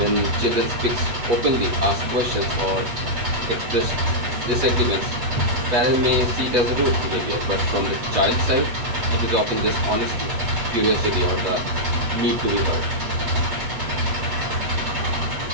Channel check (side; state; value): left; late; 8.2 ms